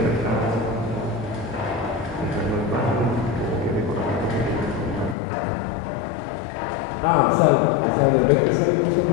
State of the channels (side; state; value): right; drops out; at 5.2 s